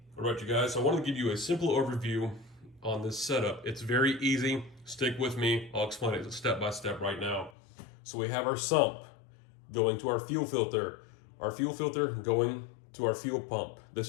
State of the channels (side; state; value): right; drops out; at 7.5 s